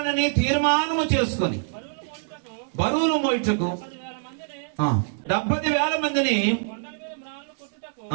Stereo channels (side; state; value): left; silent; digital silence